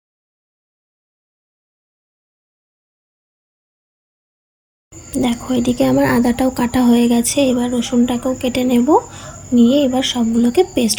দেখো, এদিকে আমার আদাটাও কাটা হয়ে গেছে। এবার রসুনটাকেও কেটে নেব, নিয়ে এবার সবগুলোকে পেস্ট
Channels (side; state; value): both; identical; correlation 1.00